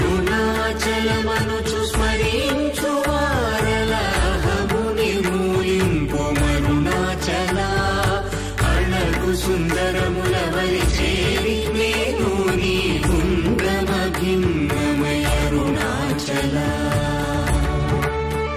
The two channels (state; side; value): identical; both; correlation 1.00